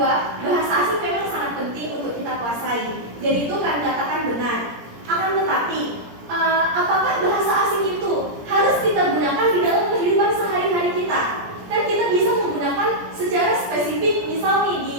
bahasa asing memang sangat penting untuk kita kuasai, dan itu kan dikatakan benar. Akan tetapi, apakah bahasa asing itu harus kita gunakan di dalam kehidupan sehari-hari kita? Kan kita bisa menggunakan secara spesifik, misal nih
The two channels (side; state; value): left; late; 17 ms